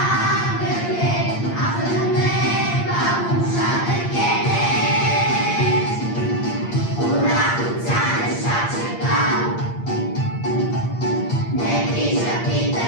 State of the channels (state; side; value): late; right; 8.6 ms